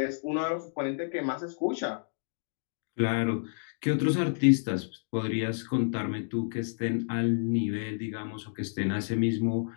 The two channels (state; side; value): silent; right; 58 dB below the other